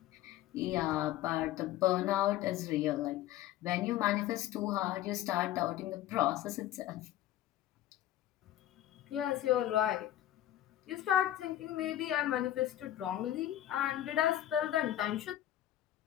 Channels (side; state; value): right; quieter; 13.1 dB